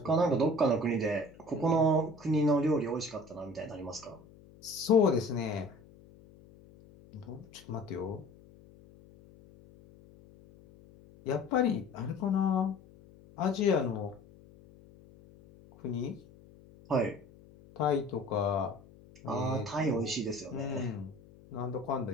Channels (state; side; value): noise; left; hum, 23 dB below the sound